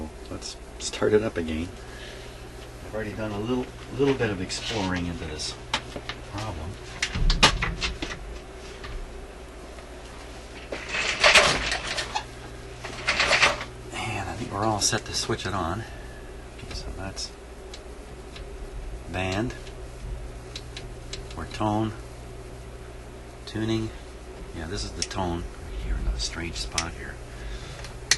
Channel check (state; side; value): identical; both; correlation 1.00